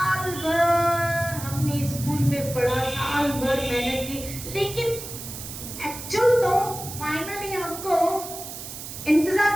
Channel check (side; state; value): right; noise; hiss, 10 dB below the sound